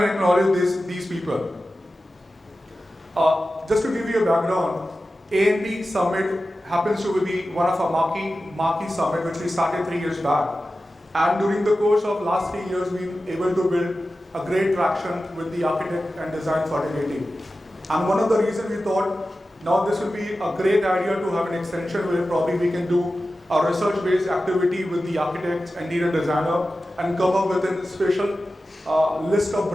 and acknowledge these people. Just to give you a background, A&P Summit happens to be one of our marquee summit which we started 3 years back. And during the course of last 3 years, we've been able to build a great traction with the architect and design fraternity. And one of the reasons we thought, now this will be a great idea to have an extension where probably we can do a research-based activity with the architects and interior designer and come up with a special list of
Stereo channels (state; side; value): normal; both; correlation 0.94